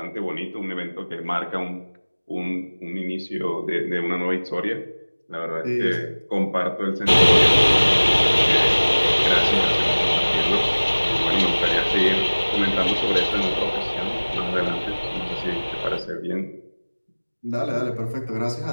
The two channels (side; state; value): both; inverted; correlation -1.00